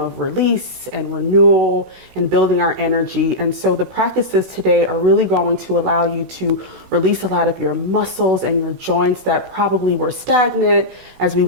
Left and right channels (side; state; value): left; late; 16 ms